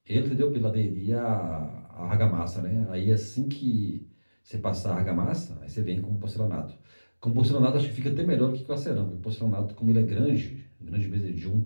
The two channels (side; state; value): both; inverted; correlation -1.00